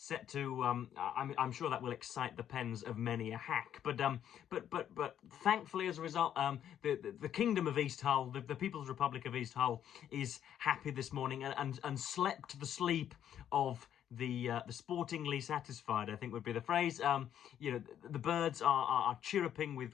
to. I'm sure that will excite the pens of many a hack. But thankfully, as a result, the Kingdom of East Hull, the People's Republic of East Hull, is happy this morning and slept the sleep of the sportingly satisfied, I think would be the phrase. You know, the birds are chirruping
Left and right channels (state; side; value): quieter; right; 10.1 dB